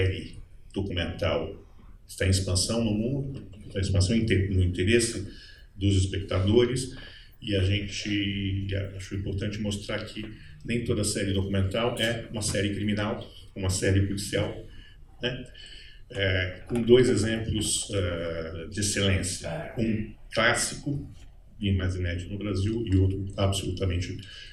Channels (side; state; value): both; identical; correlation 1.00